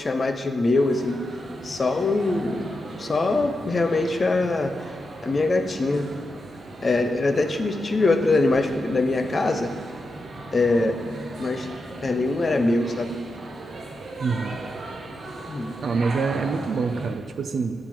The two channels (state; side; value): normal; both; correlation 0.87